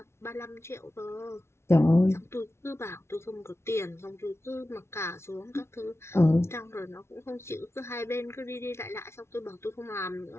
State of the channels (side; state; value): right; late; 0.13 ms